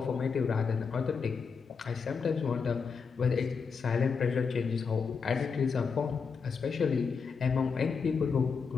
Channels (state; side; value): quieter; right; 5.5 dB